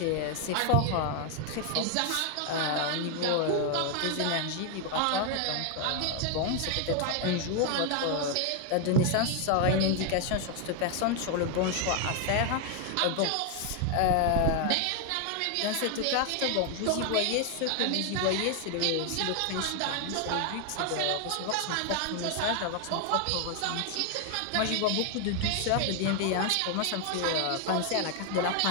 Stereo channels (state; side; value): different; both; correlation 0.00